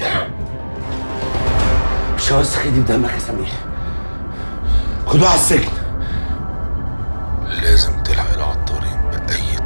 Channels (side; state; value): both; inverted; correlation -1.00